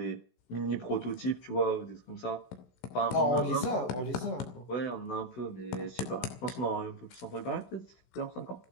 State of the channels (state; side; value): late; right; 16 ms